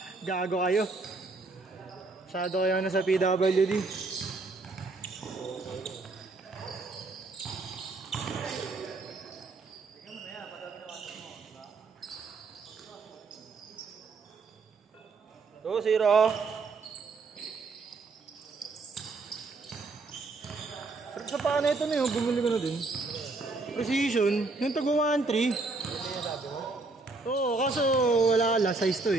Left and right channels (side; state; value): left; quieter; 3.7 dB